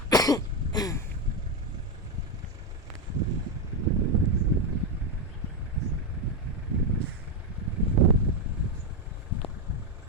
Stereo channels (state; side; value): normal; both; correlation 0.07